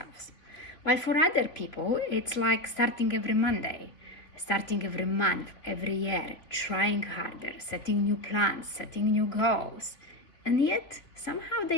While for other people, it's like starting every Monday, starting every month, every year, trying harder, setting new plans, setting new goals. And yet, somehow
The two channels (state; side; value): late; right; 3.1 ms